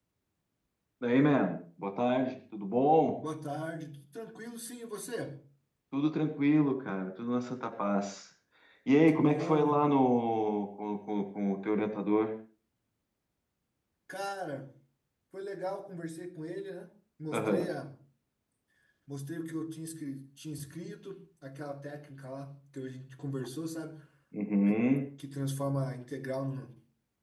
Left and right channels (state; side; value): identical; both; correlation 1.00